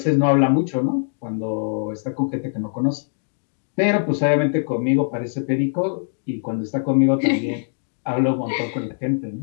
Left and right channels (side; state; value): right; silent; digital silence